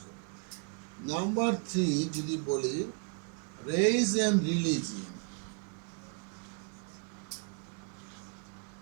করে। নাম্বার 3 যদি বলি, race and religion.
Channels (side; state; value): left; quieter; 39.8 dB